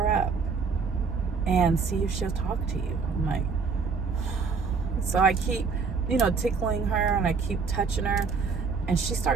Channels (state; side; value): quieter; left; 5.1 dB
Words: up and see if she'll talk to you. I'm like, so I keep, tickling her, and I keep touching her, and she